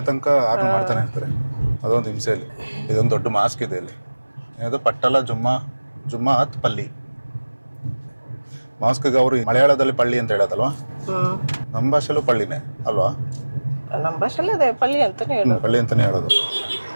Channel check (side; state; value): both; inverted; correlation -1.00